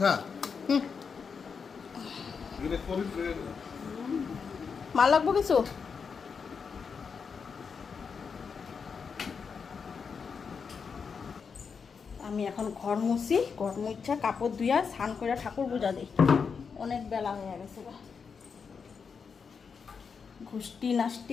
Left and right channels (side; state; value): right; quieter; 5.8 dB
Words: মাল লাগবো কিছু? আমি এখন ঘর মুছি, ঘর মুছা কাপড় ধুইয়া স্নান করে ঠাকুর পূজা দিই। অনেক বেলা হয়ে গেছে, ঘুষ্টি